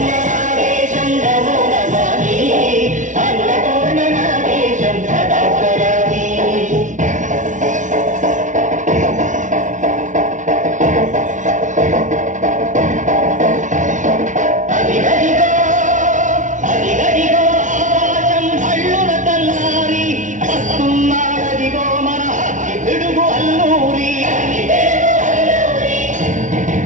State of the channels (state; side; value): late; left; 0.37 ms